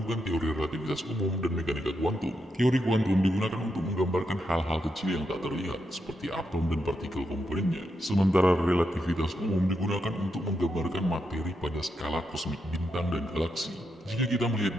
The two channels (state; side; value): normal; both; correlation 0.83